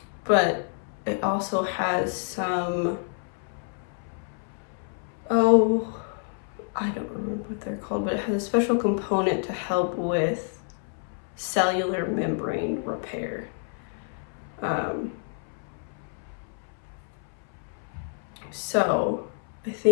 But it also has some, I don't remember what they're called, but it has a special component to help with cellular membrane repair. So I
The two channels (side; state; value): right; silent; 59 dB below the other